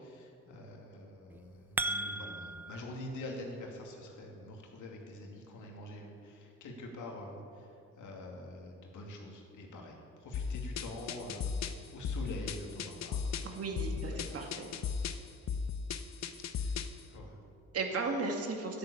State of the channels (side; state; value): both; normal; correlation 0.34